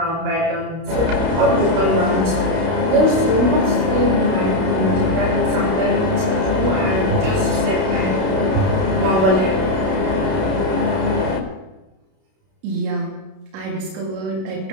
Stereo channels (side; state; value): left; late; 32 ms